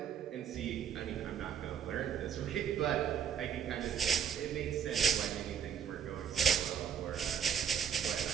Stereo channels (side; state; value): left; quieter; 8.1 dB